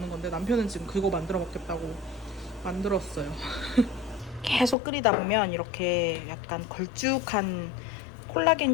건데 남편은 지금 그거 만들어 먹겠다고 만들었어요. 계속 끓이다 보면 이렇게 약간 걸쭉한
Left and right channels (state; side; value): drops out; right; at 4.8 s